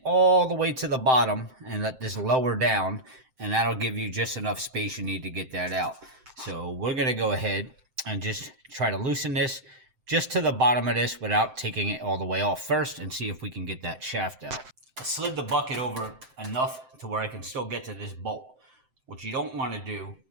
all the way to the bottom and let this lower down, and that'll give you just enough space you need to get that out. So we're going to go ahead and just try to loosen this just to the bottom of this without taking it all the way off first, and see if we can get that shaft out. I slid the bucket over enough to where I can still get to this bolt. What you don't want to do,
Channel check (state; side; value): late; left; 7.7 ms